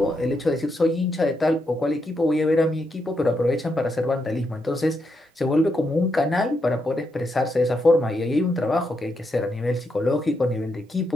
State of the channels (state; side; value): normal; both; correlation 0.81